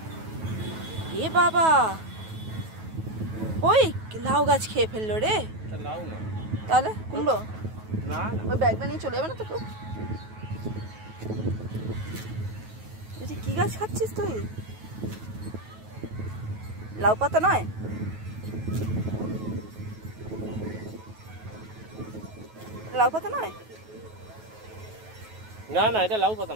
এ বাবা, ওই লাউ গাছ খেয়ে ফেললো রে। লাউ না তাহলে কুমড়ো? না ওই ব্যাগটা নিয়ে চলে যাবে না তো কেউ? কি গাছ খাচ্ছিস তুই? লাউ পাতা নয়? লাউ পাতা নয়? না না, এটা লাউ পাতা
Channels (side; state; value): left; late; 9.3 ms